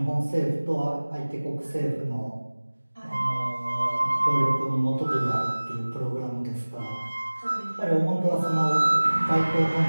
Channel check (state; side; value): inverted; both; correlation -1.00